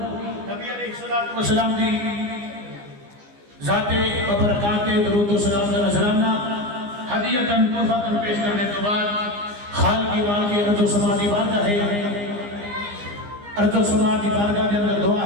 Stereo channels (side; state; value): left; late; 15 ms